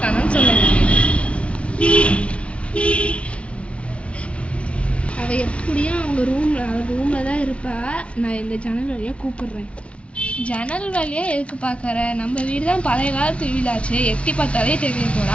சொல்ல வேண்டியது. அவள் எப்படியும் அவள் ரூமில் தான் இருப்பா. நான் இந்த ஜன்னல் வழியாக கூப்பிடுறேன். ஜன்னல் வழியாக எதுக்கு பார்க்குற? நம்ம வீடு தான் பழைய காலத்து வீடாச்சு. எட்டி பார்த்தாலே தெரிய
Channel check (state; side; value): late; right; 0.061 ms